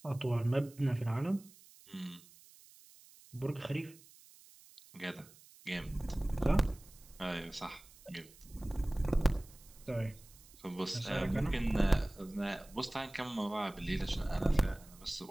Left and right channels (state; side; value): noise; right; hiss, 23 dB below the sound